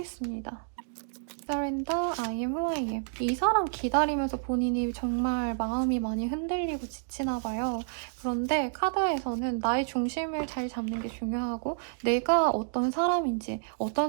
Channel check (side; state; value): left; silent; digital silence